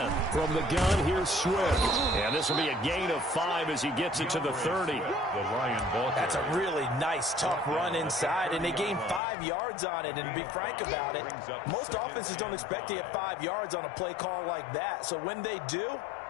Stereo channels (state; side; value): drops out; right; at 9.2 s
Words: From the gun, here's Swift. And this will be a gain of 5 as he gets it to the 30. That's a really nice, tough run inside, and they gained 5 yards on it. And to be frank about it, most offenses don't expect to get 5 yards on a play call like that. So when they do,